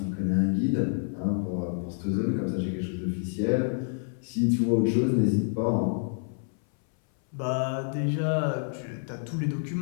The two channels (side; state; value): right; silent; 59 dB below the other